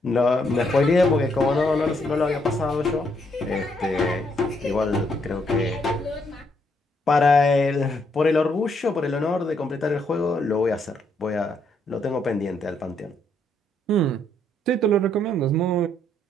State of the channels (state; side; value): normal; both; correlation 0.73